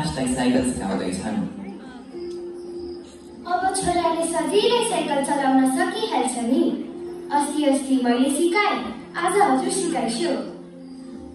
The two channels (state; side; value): identical; both; correlation 1.00